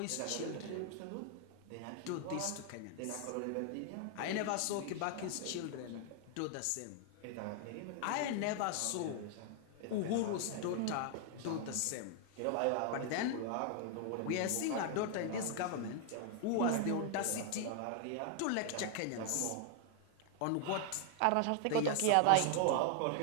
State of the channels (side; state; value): both; different; correlation 0.00